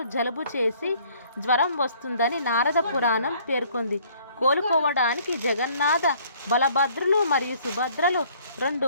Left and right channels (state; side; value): inverted; both; correlation -0.59